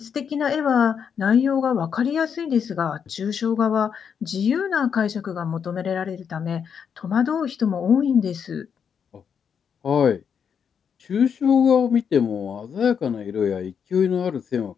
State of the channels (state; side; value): quieter; right; 7.2 dB